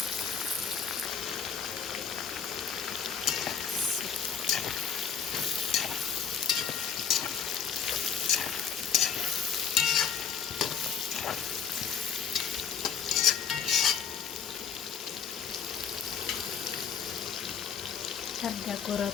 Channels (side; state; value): right; quieter; 7.1 dB